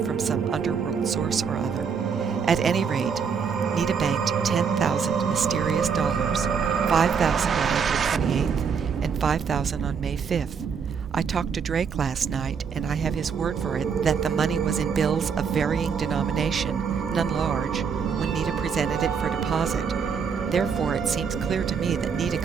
from some underworld source or other. At any rate, Nita banked 10,000 mysterious dollars, 5,000 on April 28th and 5,000 on May 5th. I talked to Drake last night, and I have his word for it that the money was in bills of varying denomination, none large, when Nita presented it for deposit. Therefore, it seems clear to me that Nita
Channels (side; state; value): left; quieter; 6.3 dB